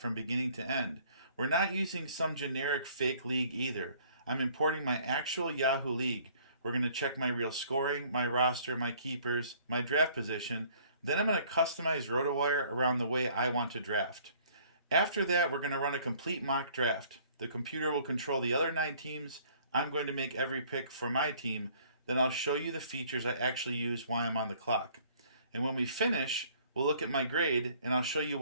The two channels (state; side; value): inverted; both; correlation -0.58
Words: from beginning to end. We're not using some generic fake league either. I'm importing my actual Yahoo league. We're going to check my real scoring, my roster, my keepers, my draft position. Then I'm going to customize RotoWire around the way I want to draft. After that, we're going to run a complete mock draft. The computer will control the other 9 teams. I'm going to make every pick for my team. Then I'll show you the features I actually use while I'm on the clock. And when we finish, we'll look at my grade, and I'll show you